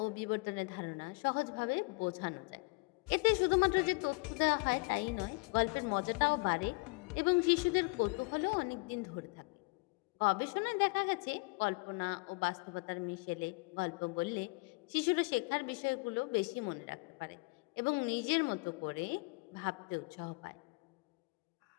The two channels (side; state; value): right; quieter; 28.9 dB